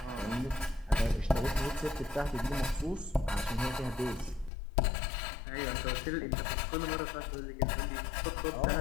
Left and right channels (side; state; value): right; drops out; at 4.5 s